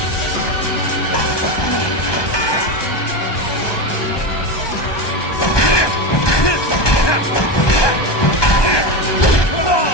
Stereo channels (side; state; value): right; late; 1.2 ms